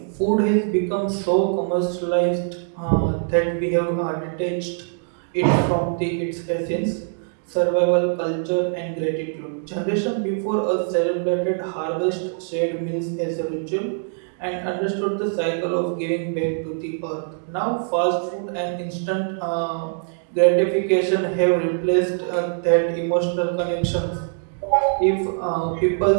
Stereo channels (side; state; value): left; silent; digital silence